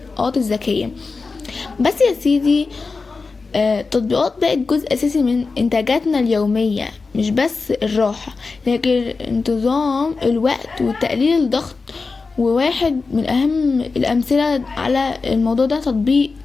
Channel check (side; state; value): right; quieter; 4.2 dB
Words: الذكية. بس يا سيدي، التطبيقات بقت جزء أساسي من إنتاجاتنا اليومية، مش بس الراحة لكن انتظام الوقت وتقليل الضغط. وواحد من أهم الأمثلة على الموضوع ده تطبيق